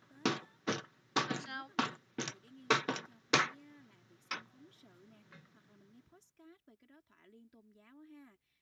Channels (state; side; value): identical; both; correlation 1.00